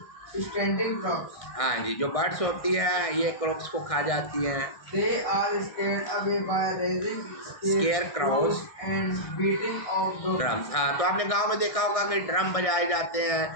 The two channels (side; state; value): right; late; 1.6 ms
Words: standing crops। हाँ जी, जो बर्ड्स होती है ये क्रॉप्स को खा जाती हैं। They are scared away by raising scarecrows and beating of the drums। हाँ, तो आपने गांव में देखा होगा कि ड्रम बजाए जाते हैं